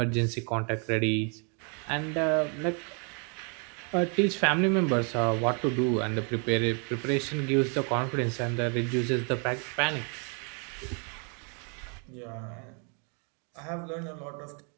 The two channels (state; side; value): quieter; left; 37.9 dB